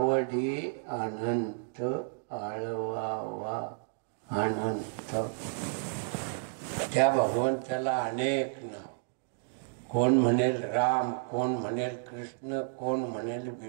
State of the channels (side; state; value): left; silent; digital silence